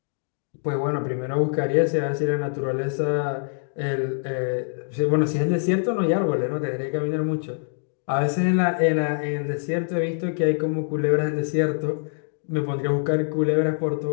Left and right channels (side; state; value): right; silent; digital silence